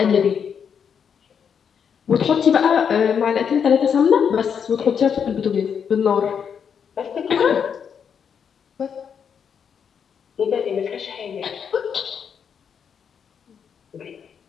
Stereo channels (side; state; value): right; quieter; 7.3 dB